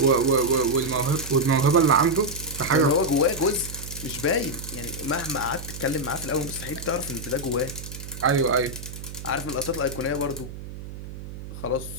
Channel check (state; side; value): noise; right; hum, 11 dB below the sound